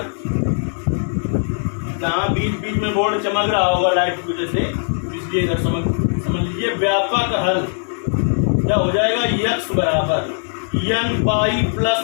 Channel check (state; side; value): silent; right; digital silence